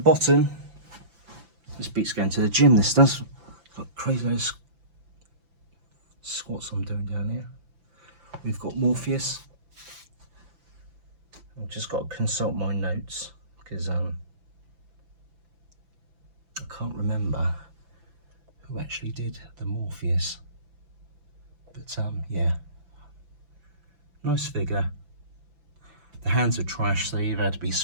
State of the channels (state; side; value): late; left; 6.0 ms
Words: this beats going to the gym, this does. Got crazy those squats I'm doing down here. We've got Morpheus. I've just got to consult my notes because I can't remember who actually did the Morpheus. But yeah, nice figure. The hands are trash, so they've had to be